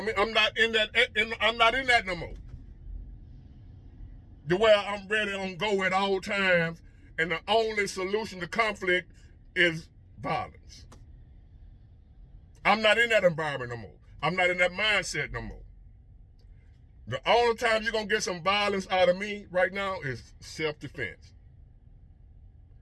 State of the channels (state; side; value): identical; both; correlation 1.00